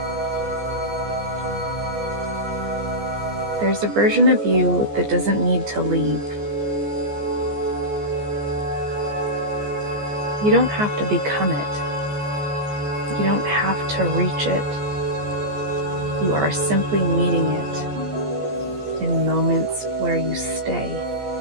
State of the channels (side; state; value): left; late; 14 ms